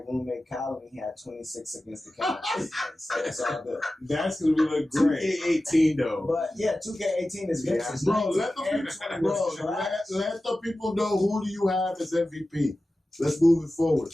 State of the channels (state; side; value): normal; both; correlation 0.95